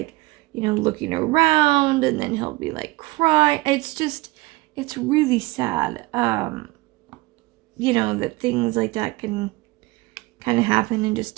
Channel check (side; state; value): left; quieter; 21.9 dB